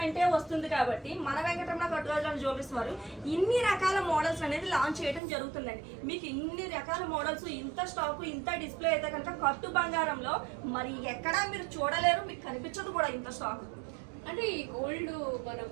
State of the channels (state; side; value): drops out; left; at 5.2 s